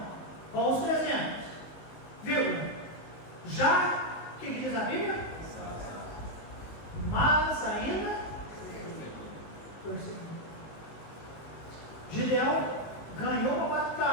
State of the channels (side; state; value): right; late; 19 ms